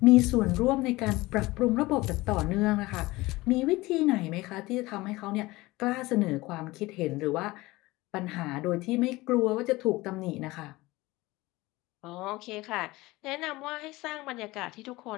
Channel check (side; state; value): right; quieter; 20.3 dB